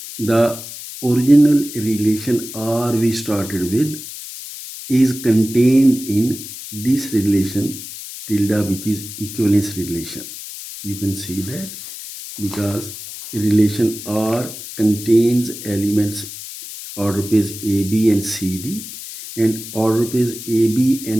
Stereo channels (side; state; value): left; noise; hiss, 11 dB below the sound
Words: the original relation R we started with is contained in this relation tilde, which is equivalence relation. You can see that because relation R contains elements order pairs AB and CD, and order pairs AB